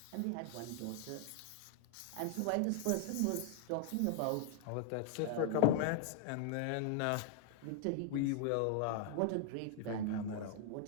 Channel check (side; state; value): both; different; correlation 0.00